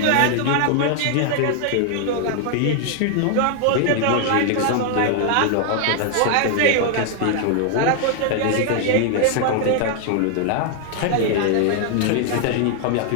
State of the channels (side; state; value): both; different; correlation 0.00